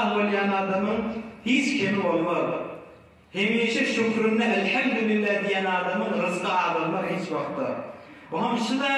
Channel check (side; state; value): both; identical; correlation 1.00